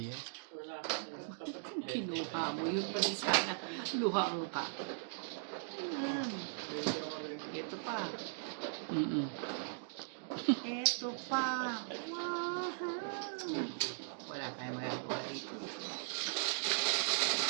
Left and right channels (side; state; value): left; silent; digital silence